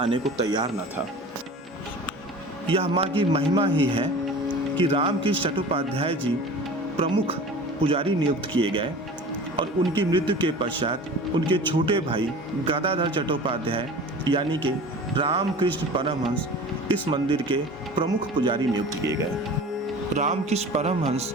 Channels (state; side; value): normal; both; correlation 0.39